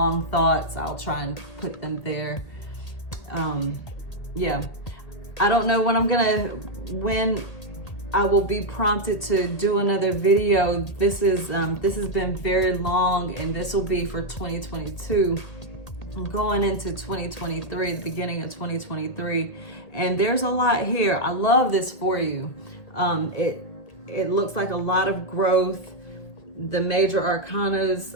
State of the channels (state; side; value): late; right; 1.8 ms